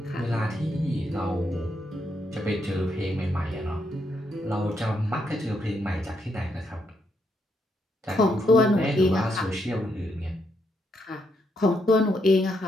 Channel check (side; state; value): both; normal; correlation 0.78